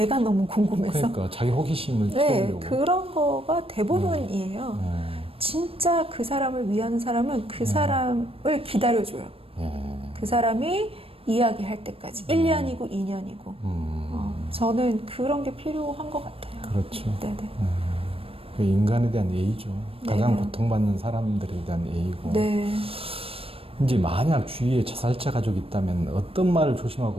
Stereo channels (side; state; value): left; late; 0.28 ms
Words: 너무 궁금해서. 그러니까 자기 호기심을 네, 채우려고. 그런 거가 대부분이에요. 진짜 그 사람을 위하는 사람은 그 사람을 기다려줘요. 그 사람이 이야기할 때까지. 1년이고 2년이고. 저는 그런 게 필요한 것 같아요. 그렇죠. 네네. 그 인간에 대한 예의죠. 가장 네. 고통받는 사람들에 대한 예의고. 네. 이제 만약 주위에 자살자 가족이 있다면 어떤 말을